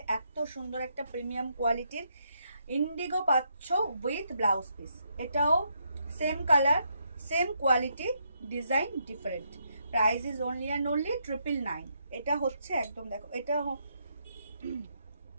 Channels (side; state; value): both; inverted; correlation -0.77